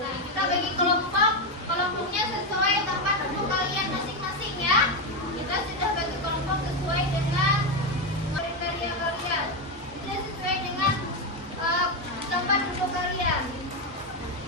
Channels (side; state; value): both; normal; correlation 0.08